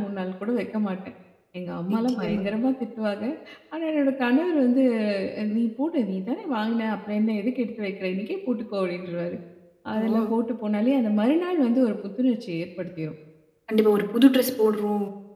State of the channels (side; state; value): both; identical; correlation 1.00